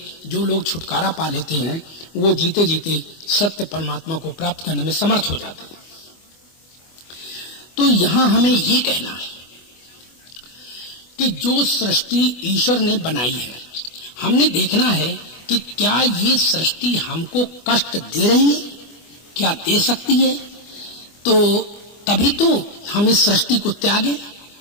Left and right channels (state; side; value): late; right; 24 ms